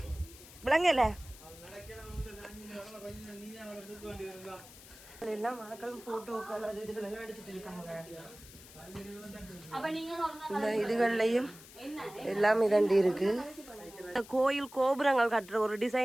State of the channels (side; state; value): left; noise; hiss, 19 dB below the sound